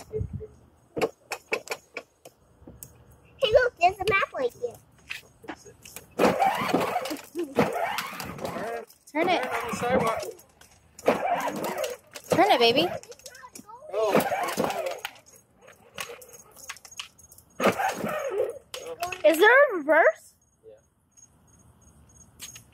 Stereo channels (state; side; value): identical; both; correlation 1.00